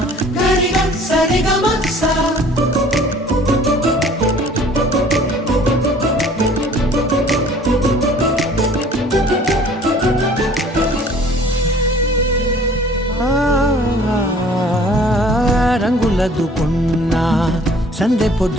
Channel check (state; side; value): normal; both; correlation 0.52